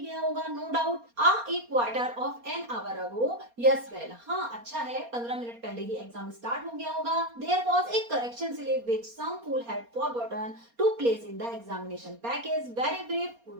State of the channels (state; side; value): late; left; 4.3 ms